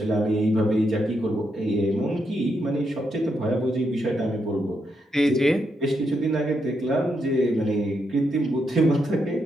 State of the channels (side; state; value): both; normal; correlation 0.81